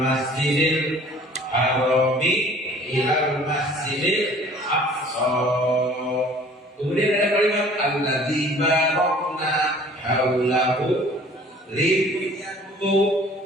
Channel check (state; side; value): normal; both; correlation 0.51